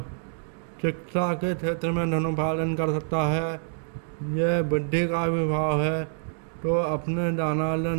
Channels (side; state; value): left; silent; digital silence